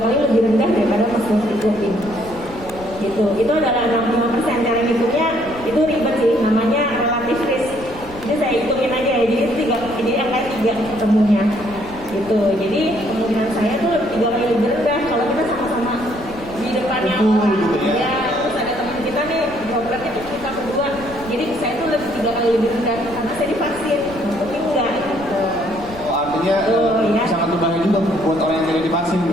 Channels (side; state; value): left; noise; rumble, 17 dB below the sound